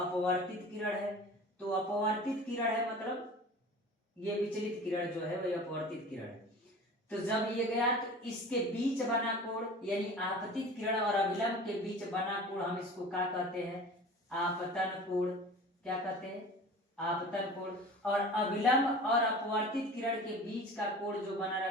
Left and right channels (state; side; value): normal; both; correlation 0.39